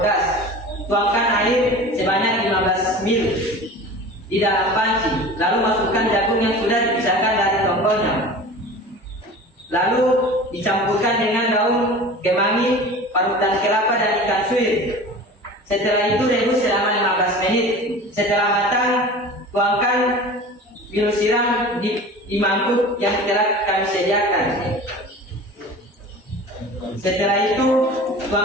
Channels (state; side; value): normal; both; correlation 0.38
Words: Tuangkan air sebanyak 15 ml di dalam panci, lalu masukkan jagung yang sudah dipisahkan dari tongkolnya. Lalu dicampurkan dengan daun kemangi, parutan kelapa, dan ikan suwir. Setelah itu rebus selama 15 menit. Setelah matang, tuangkan minum siram di mangkuk yang telah kami sediakan. Setelah itu,